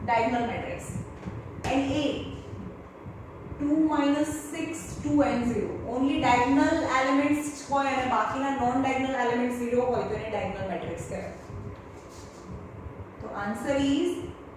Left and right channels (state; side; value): identical; both; correlation 1.00